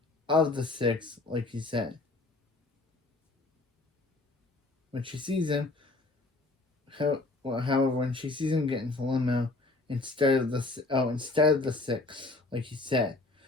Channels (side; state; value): right; quieter; 3.2 dB